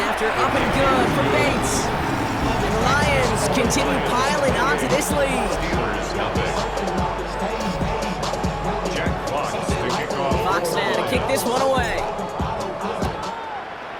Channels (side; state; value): both; identical; correlation 1.00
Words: after up and good for Bates. And the Lions continue piling onto this lead. Fox now to kick this one away.